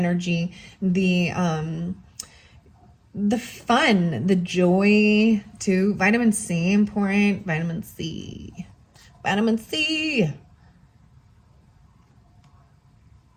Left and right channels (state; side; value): identical; both; correlation 1.00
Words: the fun, the joy too. Vitamin C, important. Vitamin C.